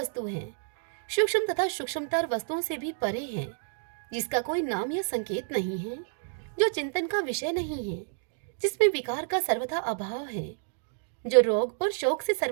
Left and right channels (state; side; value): silent; left; digital silence